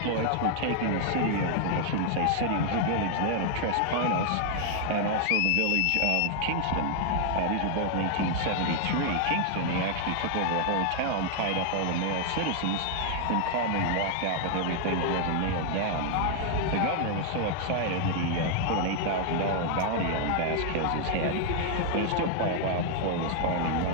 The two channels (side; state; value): both; different; correlation 0.00